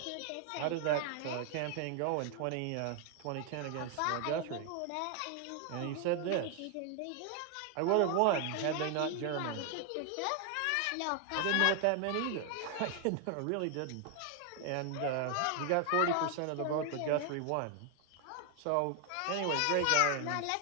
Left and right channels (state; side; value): different; both; correlation 0.00